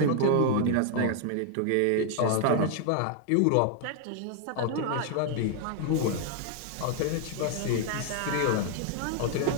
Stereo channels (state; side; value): different; both; correlation 0.00